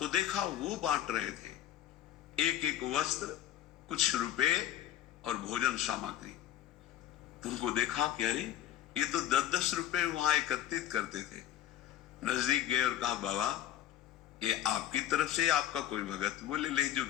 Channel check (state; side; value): quieter; right; 11.6 dB